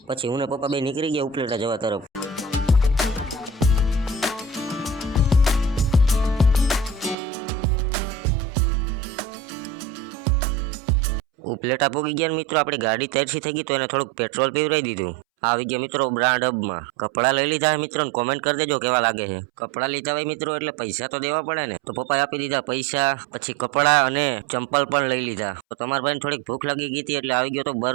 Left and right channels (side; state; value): left; drops out; at 7.2 s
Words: પછી હું ને પપ્પા બે નીકળી ગયા ઉપલેટા જવા તરફ। ઉપલેટા પૂગી ગયા મિત્રો, આપણી ગાડી તરસી થઈ ગઈ તો એને થોડુંક પેટ્રોલ પીવરાઈ દીધું। આવી ગયા મિત્રો બ્રાન્ડ હબમાં, કપડાં લઈ લીધા મિત્રો ને કોમેન્ટ કરી દેજો કેવા લાગે છે। કપડાં લીધા હોય મિત્રો એટલે પૈસા તો દેવા પડે ને, તો પપ્પાએ આપી દીધા પૈસા, પછી કપડાં અને ચંપલ પણ લઈ લીધા। તો તમારા ભાઈને થોડીક ભૂખ લાગી ગઈ હતી એટલે આવી ગયો તો